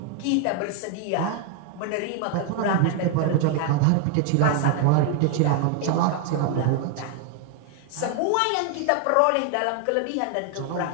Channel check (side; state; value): both; different; correlation 0.00